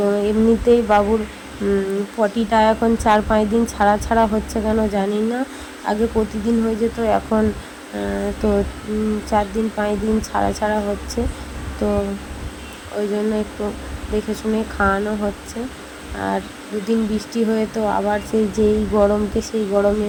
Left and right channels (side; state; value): both; identical; correlation 1.00